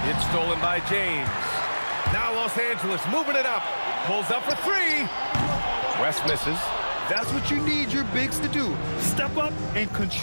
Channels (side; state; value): both; inverted; correlation -1.00